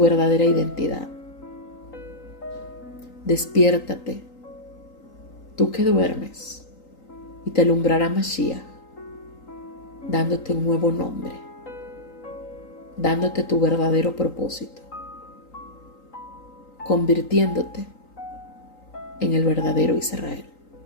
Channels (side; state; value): right; late; 3.9 ms